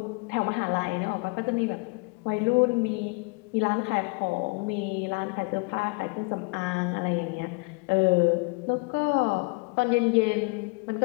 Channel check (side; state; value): right; quieter; 30.0 dB